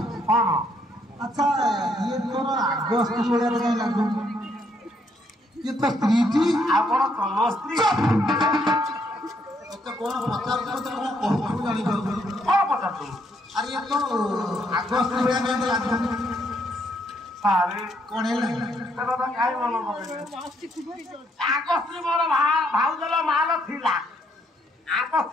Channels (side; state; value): both; normal; correlation 0.72